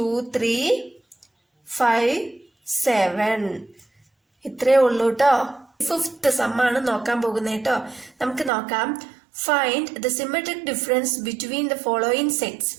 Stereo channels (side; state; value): left; drops out; at 8.5 s